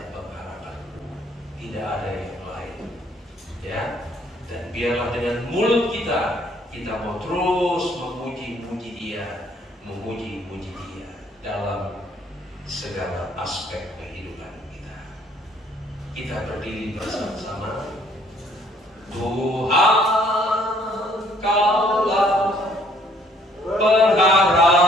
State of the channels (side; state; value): both; normal; correlation 0.62